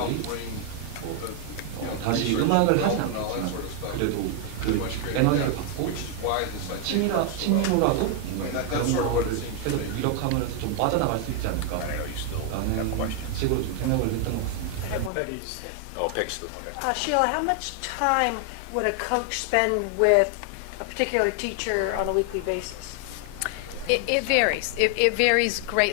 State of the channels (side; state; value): both; different; correlation 0.00